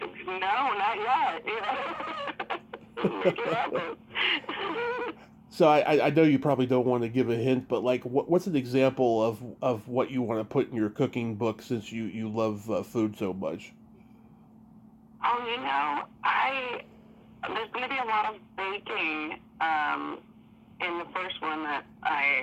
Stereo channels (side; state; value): both; identical; correlation 1.00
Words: not yet. Make it happen. So I know you probably don't want to give a hint, but like, what's an example of what you want to put in your cooking book since you love food so much? Oh, there's going to be a lot of baking in the first one that